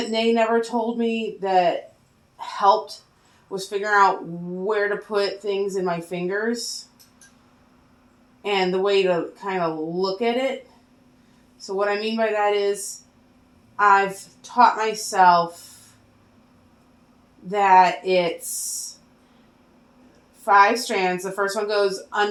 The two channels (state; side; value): identical; both; correlation 1.00